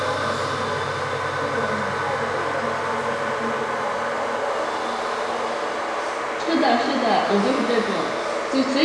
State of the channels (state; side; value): identical; both; correlation 1.00